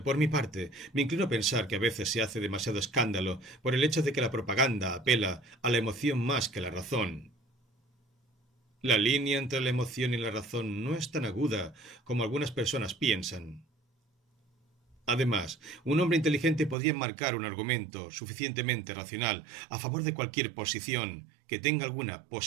Por mi parte, me inclino a pensar que a veces se hace demasiado escándalo por el hecho de que la propaganda apela a la emoción más que a la razón. La línea entre la emoción y la razón no es tan aguda como algunas personas piensan. Además, un hombre inteligente podría enmarcar un argumento suficientemente racional a favor de cualquier posición que tenga alguna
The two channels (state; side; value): drops out; left; at 16.8 s